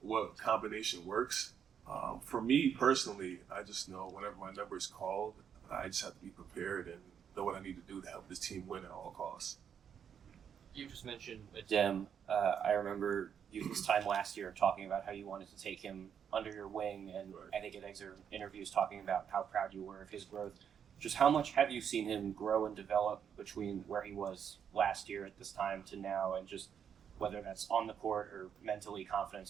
combination works. For me personally, I just know whenever my number is called, I just have to be prepared and know what I need to do to help this team win at all costs. You just mentioned Adem. I remember you this time last year talking about how you wanted to take him under your wing, and Right. I think in excerpt interviews talking about how proud you were of his growth. Just how much have you seen him grow and develop between where he was last year at this time to now, and just whether that's on the court or mentally,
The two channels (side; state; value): left; quieter; 8.0 dB